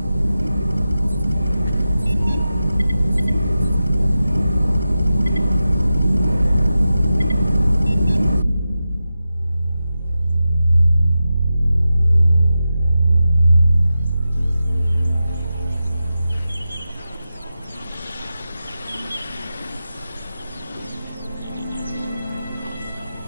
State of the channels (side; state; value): both; inverted; correlation -0.92